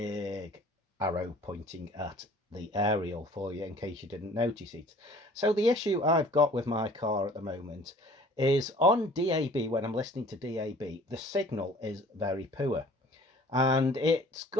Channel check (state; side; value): normal; both; correlation 0.51